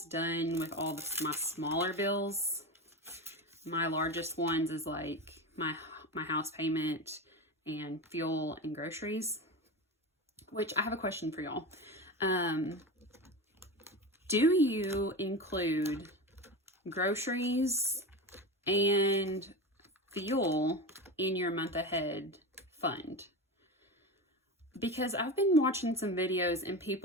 done with all my smaller bills. My largest ones is like my house payment and fuel and groceries, which I have a question for y'all. Do you include groceries and fuel in your month ahead fund? Because I've been watching some videos and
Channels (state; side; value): normal; both; correlation 0.24